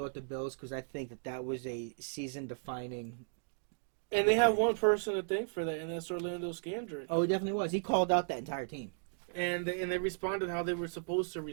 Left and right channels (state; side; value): silent; left; digital silence